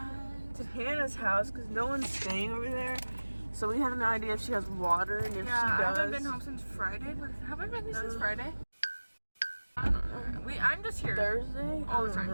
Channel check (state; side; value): inverted; both; correlation -1.00